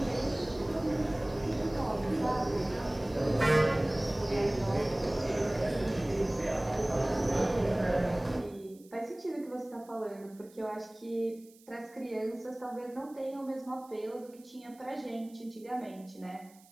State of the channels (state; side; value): noise; right; hiss, 27 dB below the sound